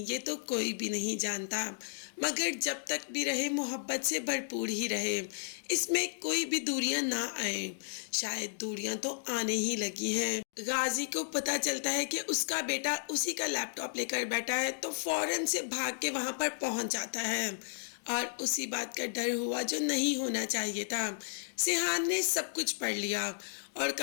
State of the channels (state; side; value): silent; right; digital silence